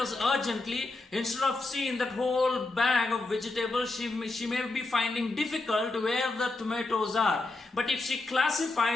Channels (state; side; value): quieter; right; 3.2 dB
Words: urgently, instead of seeing that whole bag of vegetables, she may be finding difficult where the tomatoes are. But if she